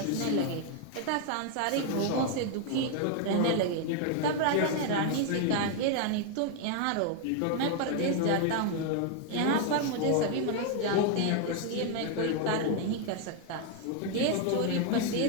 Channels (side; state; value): both; different; correlation 0.00